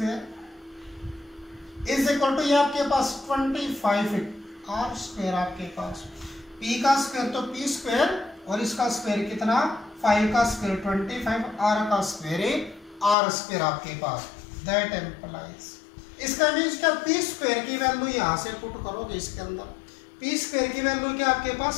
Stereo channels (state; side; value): drops out; right; at 13.2 s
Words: is equal to, ये आपके पास 25 आर स्क्वायर, आपके पास पी का स्क्वायर तो पी स्क्वायर, और इसका स्क्वायर कितना, 5 का स्क्वायर 25, आर का स्क्वायर आर स्क्वायर आपके पास। दैट एम्प्लाइज, इसका मीन्स क्या, पी स्क्वायर की वैल्यू यहां से पुट करोगे इसके अंदर, पी स्क्वायर की वैल्यू क्या आपके